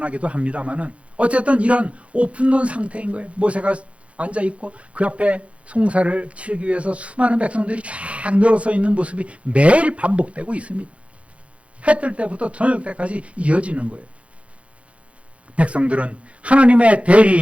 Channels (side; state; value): left; late; 0.062 ms